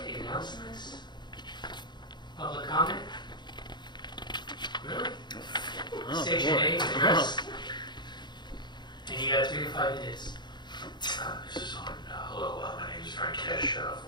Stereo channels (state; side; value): late; right; 0.21 ms